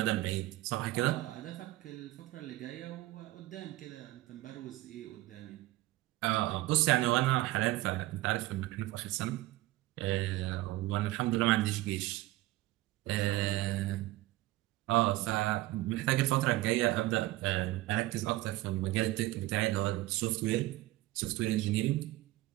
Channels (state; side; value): quieter; left; 17.6 dB